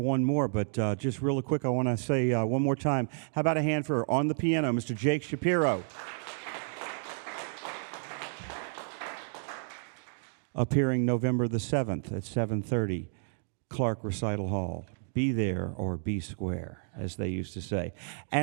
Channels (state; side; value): silent; left; digital silence